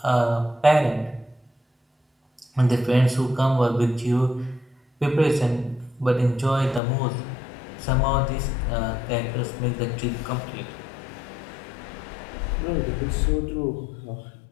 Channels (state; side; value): drops out; right; at 6.8 s